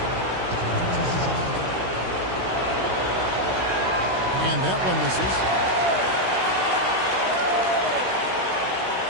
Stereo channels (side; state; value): left; late; 16 ms